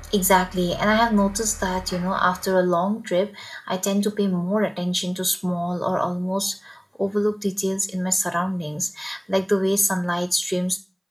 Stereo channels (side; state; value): both; identical; correlation 1.00